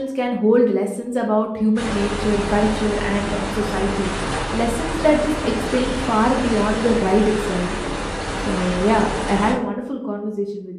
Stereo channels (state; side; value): identical; both; correlation 1.00